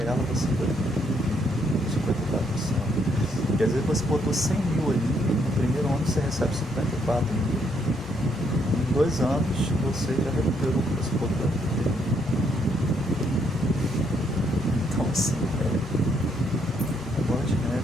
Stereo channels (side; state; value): both; normal; correlation 0.72